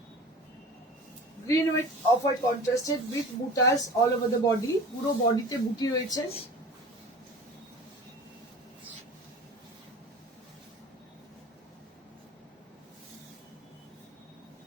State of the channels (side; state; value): both; normal; correlation 0.38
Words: Green with off white contrasted with বুটাস অল ওভার দ্য বডি, পুরো বডিতে বুটি রয়েছে।